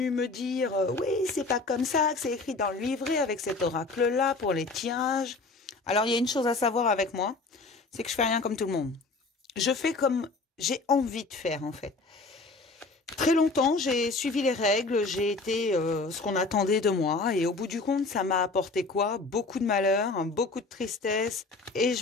me dire, oui, c'est pas comme ça que c'est écrit dans le livret avec cet oracle-là pour les tirages. Alors il y a une chose à savoir avec moi, c'est que je fais rien comme tout le monde. Je fais comme j'ai envie de faire en fait. Très longtemps, j'ai suivi les règles, j'ai été ce qu'on attendait de moi et au bout du compte, ça m'a apporté quoi? Beaucoup de malheur, beaucoup de tristesse et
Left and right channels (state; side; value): quieter; right; 3.6 dB